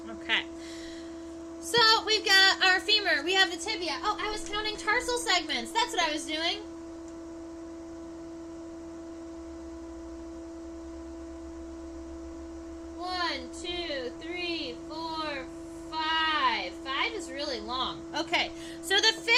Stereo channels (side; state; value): both; identical; correlation 1.00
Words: Okay. So, we've got our femur. We have the tibia. Oh, I was counting tarsal segments. That's what I was doing.